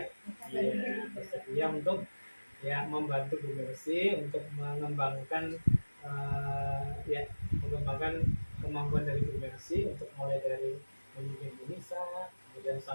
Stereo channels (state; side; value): inverted; both; correlation -1.00